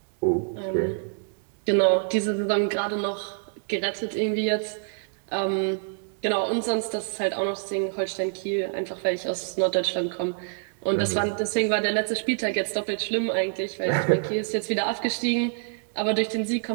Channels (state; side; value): silent; left; digital silence